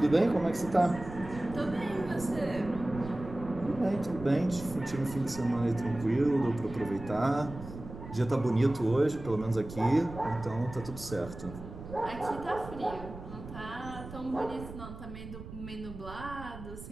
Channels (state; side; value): noise; right; rumble, 12 dB below the sound